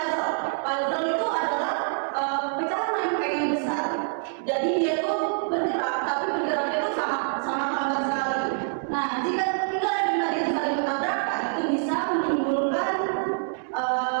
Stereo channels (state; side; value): silent; left; 61 dB below the other